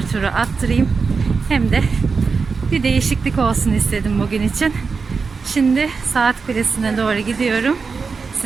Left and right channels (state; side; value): quieter; left; 4.9 dB